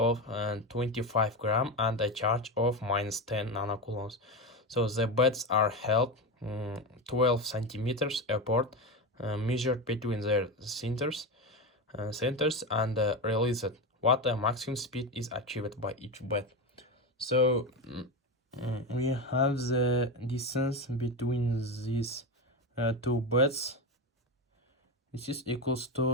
25 gram and a charge of minus 10 nanocoulombs. So the beds are held 12 centimeters apart, measured between their centers and released. What maximum speed is achieved by each bed? So we have the distance between these two beds. This is equals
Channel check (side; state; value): both; normal; correlation 0.18